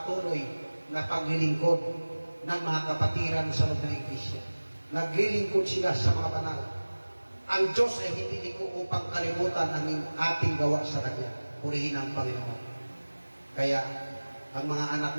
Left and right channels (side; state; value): both; inverted; correlation -1.00